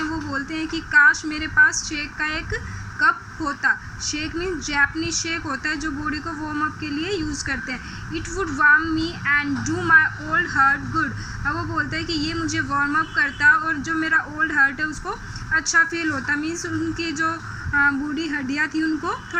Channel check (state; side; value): identical; both; correlation 1.00